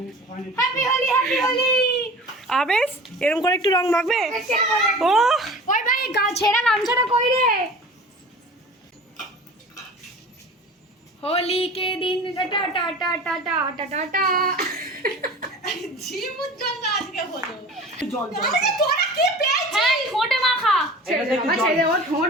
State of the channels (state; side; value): normal; both; correlation 0.39